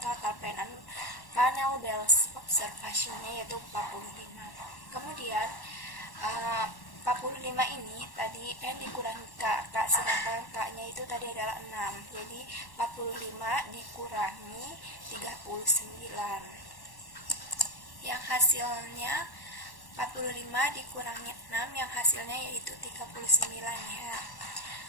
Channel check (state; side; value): late; right; 1.1 ms